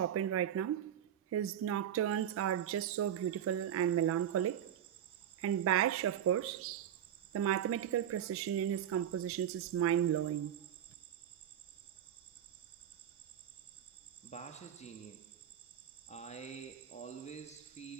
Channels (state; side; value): quieter; left; 10.1 dB